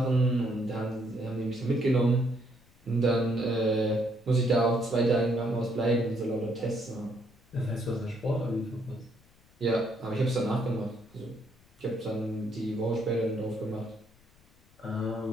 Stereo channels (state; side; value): noise; left; rumble, 30 dB below the sound